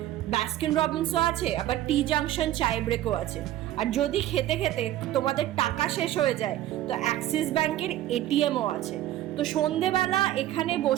বাস্কিন রবিন্সও আছে, আবার টি জাংশন চায় ব্রেকও আছে। আর যদি খেতে খেতে তোমাদের টাকা শেষ হয়ে যায়, তো অ্যাক্সিস ব্যাংকের এটিএমও আছে। তো সন্ধেবেলা এখানে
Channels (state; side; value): quieter; left; 13.7 dB